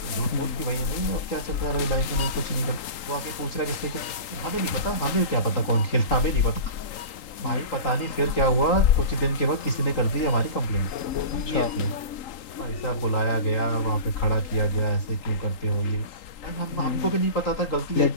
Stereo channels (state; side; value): late; right; 3.8 ms